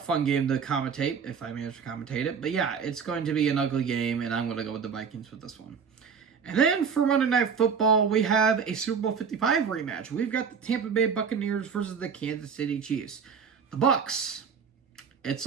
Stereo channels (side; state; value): left; quieter; 6.3 dB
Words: game to commentate if I manage to commentate it. But yeah, it's going to be an ugly game, and I'm gonna go with the Vikings with this one. And then for Monday Night Football, we have a Super Bowl 55 rematch. We've got the Tampa Bay Buccaneers versus the Kansas City Chiefs. The Bucs, it's